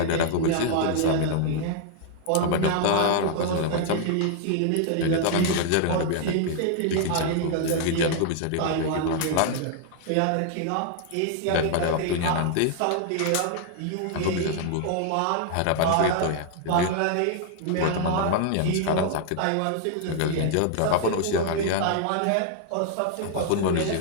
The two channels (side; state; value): both; different; correlation 0.00